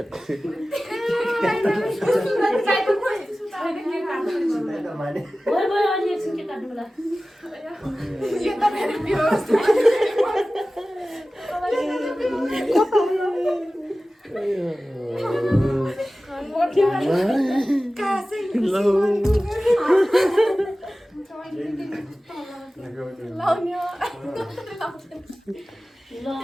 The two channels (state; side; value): normal; both; correlation 0.96